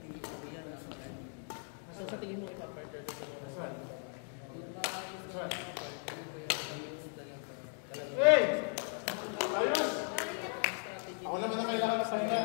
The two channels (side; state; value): right; silent; 53 dB below the other